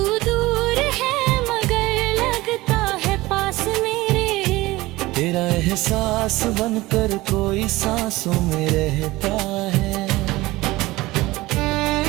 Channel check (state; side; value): quieter; left; 19.4 dB